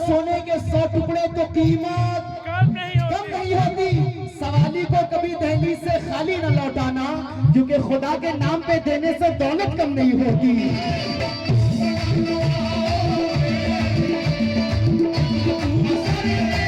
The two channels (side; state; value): both; identical; correlation 1.00